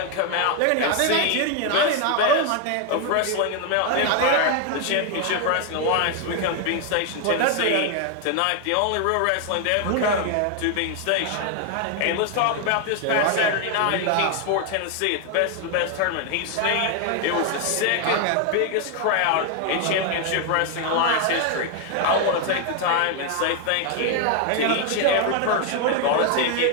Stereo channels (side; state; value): both; different; correlation 0.01